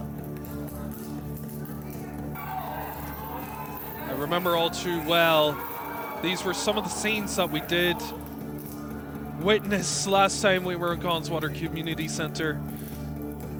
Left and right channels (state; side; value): identical; both; correlation 1.00